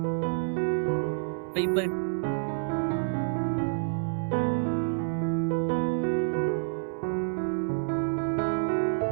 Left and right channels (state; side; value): silent; left; 59 dB below the other